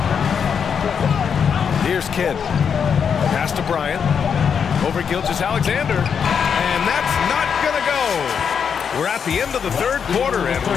Here's Kidd. Pass to Bryant. Over Gilgeous-Alexander. And that's not going to go. We're at the end of the third quarter, and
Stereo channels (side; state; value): right; quieter; 7.0 dB